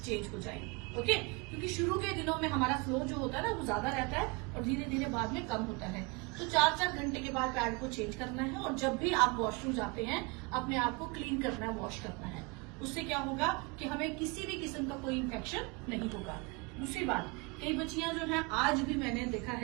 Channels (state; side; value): quieter; left; 28.5 dB